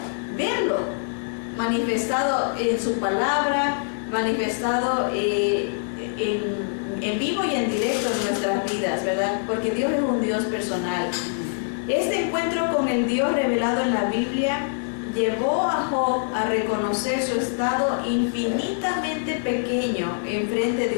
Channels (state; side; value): silent; right; digital silence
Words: manifestado en su palabra, manifestado en vivo y en directo en nuestras vidas, ¿verdad? Porque Dios es un Dios personal. Este encuentro con el Dios revelado en la Biblia llevó a Job a reconocer su estado infinitamente pequeño en frente